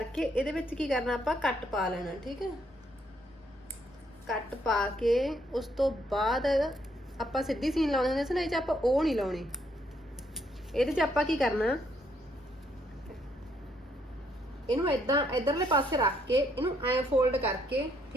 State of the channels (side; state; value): both; normal; correlation 0.72